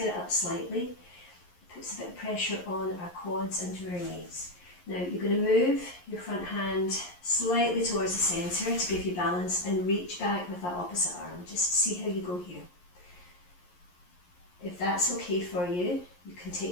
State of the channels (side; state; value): right; late; 11 ms